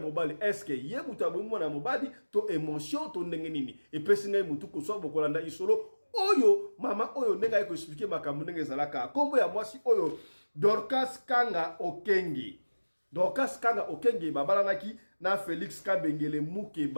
est-ce que ye mutu abomi mwana mobali to émotion to ndenge nini epesi ngai mutu ko so bokolanda isolo oyo mama oyo ndenga yeko expliquer makambo ndenge zalaka kombo ya mwasi oyo Dorcas Kanga Okenge babalanaki na Félix Kabengele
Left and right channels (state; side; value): inverted; both; correlation -1.00